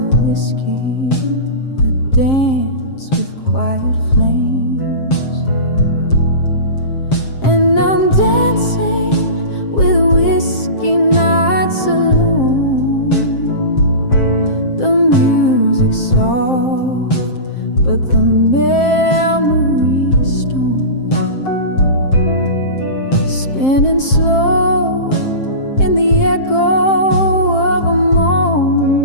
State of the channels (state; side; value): late; right; 7.5 ms